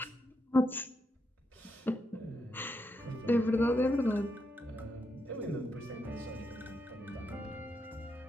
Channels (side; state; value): both; normal; correlation 0.82